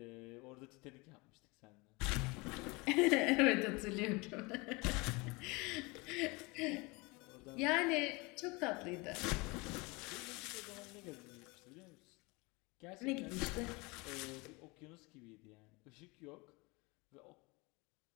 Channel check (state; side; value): quieter; right; 26.1 dB